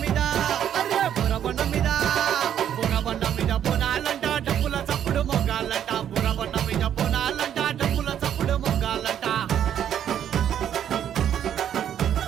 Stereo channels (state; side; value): quieter; left; 9.8 dB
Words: మీద అరే బురబండ మీద బురబండ మీద బోనాలంట డబ్బుల చప్పుడు మొగాలంట బురబండ మీద బోనాలంట డబ్బుల చప్పుడు మొగాలంట